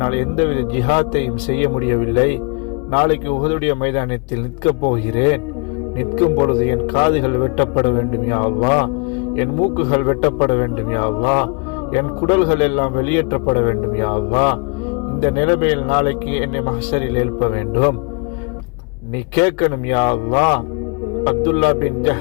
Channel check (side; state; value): right; quieter; 33.4 dB